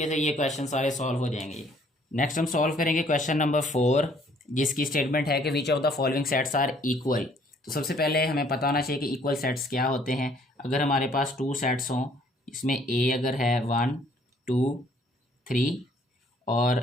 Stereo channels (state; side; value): normal; both; correlation 0.61